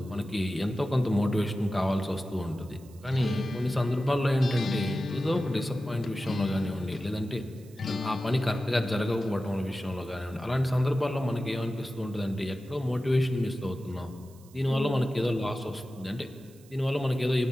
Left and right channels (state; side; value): noise; right; hiss, 27 dB below the sound